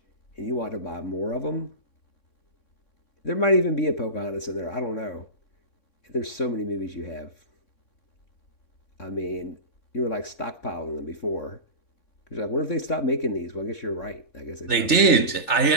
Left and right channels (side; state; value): right; late; 3.4 ms